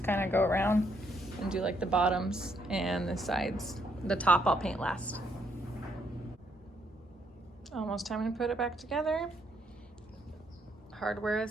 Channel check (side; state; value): both; normal; correlation 0.72